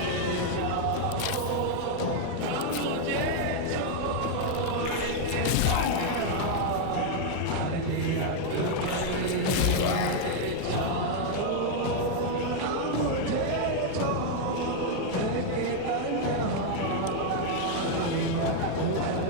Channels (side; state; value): both; different; correlation 0.00